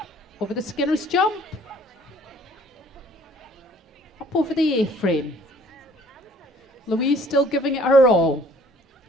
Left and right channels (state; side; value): normal; both; correlation 0.57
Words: over the Skinner's jump. Up over the A-frame. Louise still giving it her all.